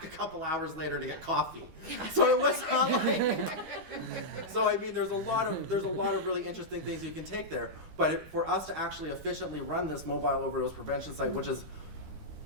a couple hours later to get coffee. So it was not like, so I mean, there's a lot of really interesting things you can take there. But for us to actually efficiently run this mobile overdose prevention site, which is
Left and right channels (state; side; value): late; left; 12 ms